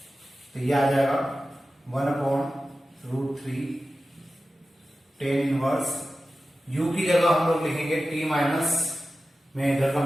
तो ये आ जाएगा 1/√3 टेन इनवर्स u की जगह हम लोग लिखेंगे t माइनस, मैं इधर का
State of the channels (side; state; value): both; normal; correlation 0.94